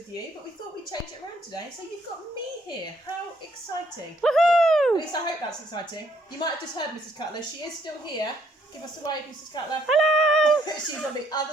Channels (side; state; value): both; normal; correlation 0.68